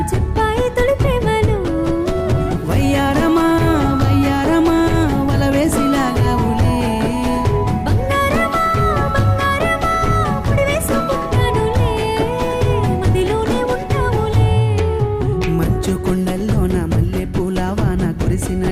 చెప్పాయి తొలి ప్రేమలు వయ్యారమా వయ్యారమా వల వేసిలాగావులే బంగారమా బంగారమా ముడి వేసుకుంటానులే మదిలోనే ఉంటావులే మంచు కొండల్లో నా మల్లె పూల వాన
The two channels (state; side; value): identical; both; correlation 1.00